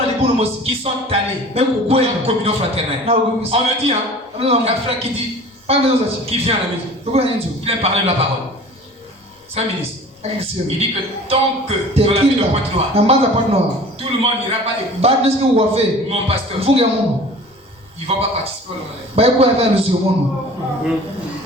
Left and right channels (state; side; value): normal; both; correlation 0.44